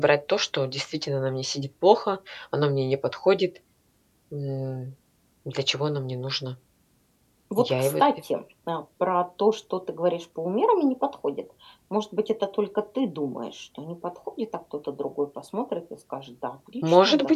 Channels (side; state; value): both; identical; correlation 1.00